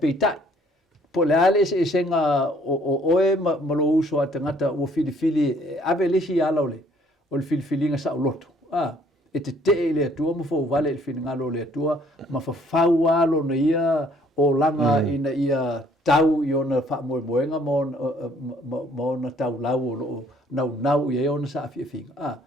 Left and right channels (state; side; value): normal; both; correlation 0.61